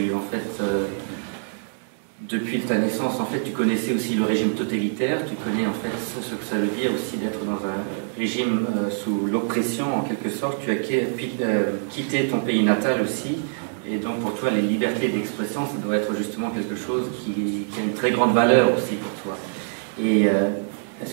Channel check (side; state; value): left; silent; digital silence